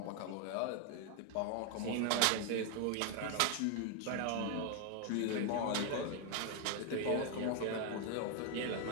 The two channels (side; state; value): both; different; correlation 0.01